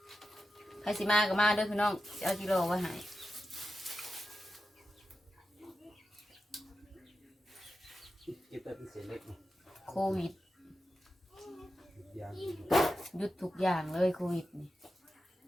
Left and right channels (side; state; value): both; normal; correlation 0.90